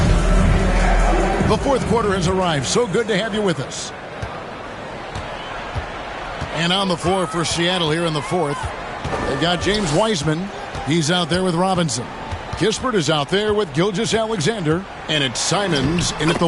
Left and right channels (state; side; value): identical; both; correlation 1.00